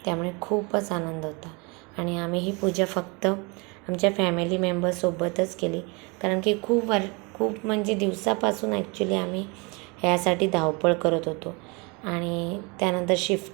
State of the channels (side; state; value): left; quieter; 29.3 dB